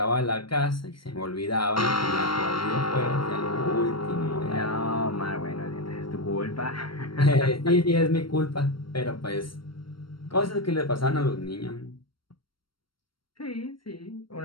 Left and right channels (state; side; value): late; right; 0.73 ms